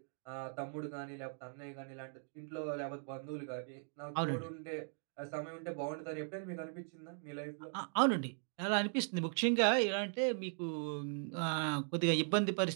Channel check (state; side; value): silent; left; 52 dB below the other